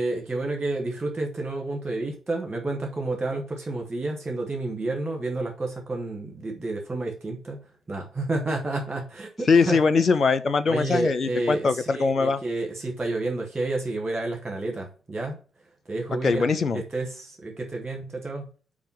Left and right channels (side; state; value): both; normal; correlation 0.84